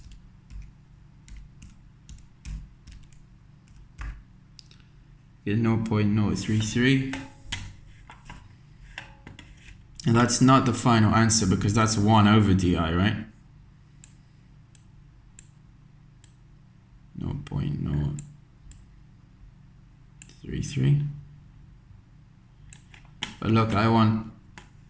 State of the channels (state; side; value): identical; both; correlation 1.00